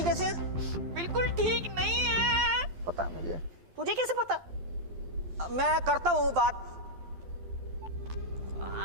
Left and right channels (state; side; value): late; left; 12 ms